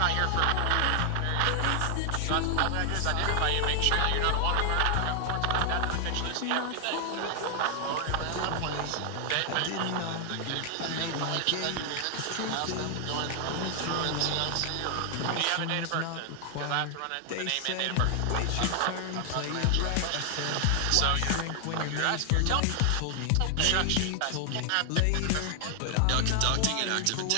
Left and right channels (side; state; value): both; different; correlation 0.00